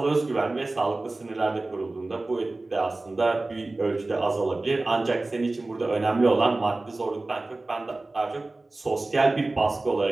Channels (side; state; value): left; quieter; 3.1 dB